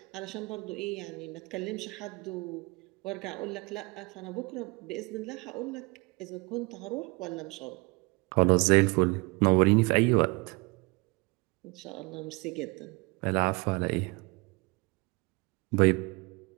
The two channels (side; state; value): left; quieter; 27.3 dB